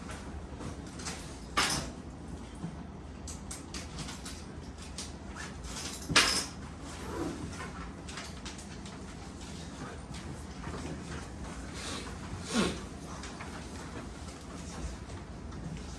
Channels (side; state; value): both; identical; correlation 1.00